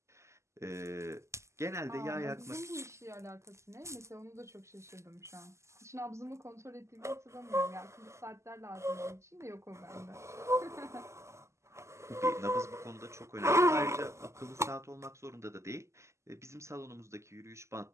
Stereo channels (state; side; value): late; left; 0.13 ms